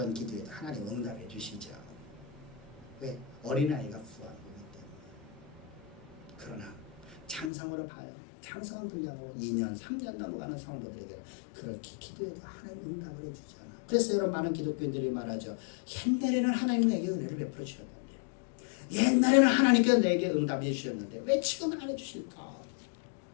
기도에도 하나님 응답해 주시죠. 왜? 어린아이가 구한 거기 때문에. 그러나 장성으로 봐요. 장성한 분량으로 2년, 3년 넘어가는 성도들에게 그렇게 기도해도 하나님 응답을 해주잖아. 그래서 여러분 많은 기독교인들이 말하죠. 옛날에는 하나님 내게 은혜를 베풀어 주셨는데, 옛날에는 하나님께서 내게 응답해 주셨는데 왜 지금은 안 해주실까?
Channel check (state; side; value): drops out; right; at 7.5 s